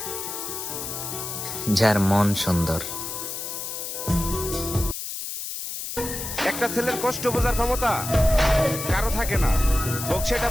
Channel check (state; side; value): noise; left; hiss, 6 dB below the sound